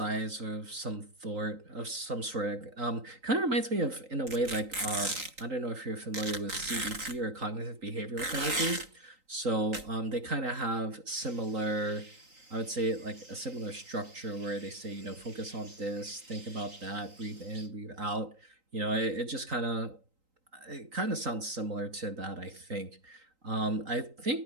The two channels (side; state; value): left; late; 3.9 ms